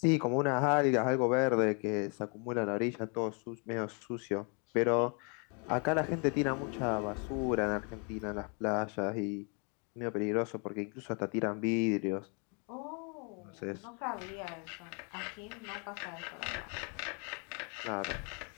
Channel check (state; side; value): quieter; right; 36.5 dB